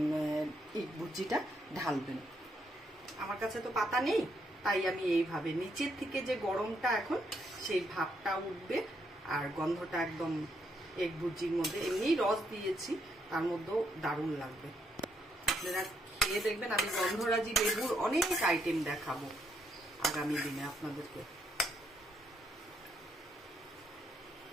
এই ভুজিটা ঢালবেন। আমার কাছে তো পাতা নেই, তাই আমি এইভাবে নিচের থেকে যে গরমটা এখন সেই ভাবটা উঠবে, আর গন্ধটা একদম এক ভুজির মধ্যে, এমনি রস দিয়েছি তার মধ্যেও দারুণ লাগবে। আপনারা খেয়ে দেখবেন। আমি গন্ধরাজি লেবুর অনেক আইটেম দেখাবো আগামী দিনে আপনাদেরকে।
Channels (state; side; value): normal; both; correlation 0.75